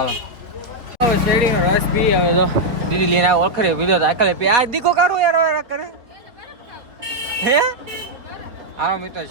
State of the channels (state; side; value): late; left; 4.1 ms